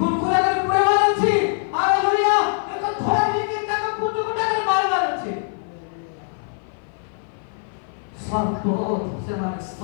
कर पुड़ेवा अछि। हालेलुया एक धोरी के ताको कुटुकुटा कर मारबा अछि। सर्प से माने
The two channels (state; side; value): silent; right; 55 dB below the other